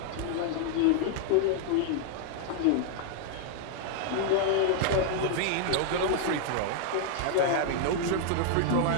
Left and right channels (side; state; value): both; different; correlation 0.00